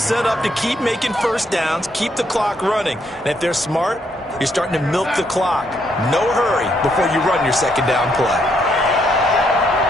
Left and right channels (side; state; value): both; normal; correlation 0.74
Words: up to keep making first downs, keep the clock running. And if they're smart, you're starting to milk the clock. No hurry before you run your 2nd down play.